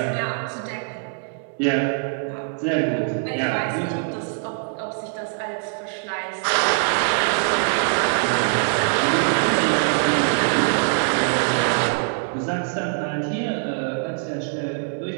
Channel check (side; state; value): left; silent; 63 dB below the other